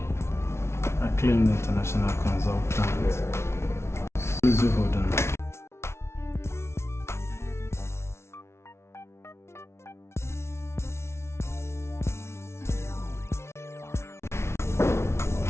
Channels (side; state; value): right; late; 0.13 ms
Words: Acclaimed international consultant. Please do hold on.